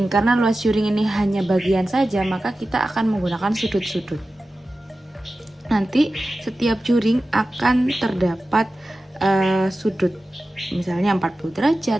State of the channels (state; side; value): normal; both; correlation 0.94